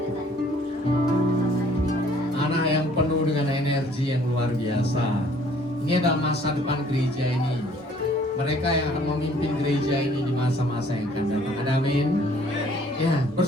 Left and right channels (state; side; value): normal; both; correlation 0.58